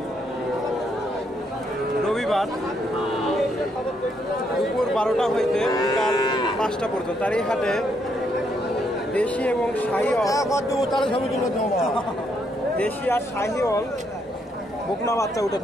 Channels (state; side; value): normal; both; correlation 0.74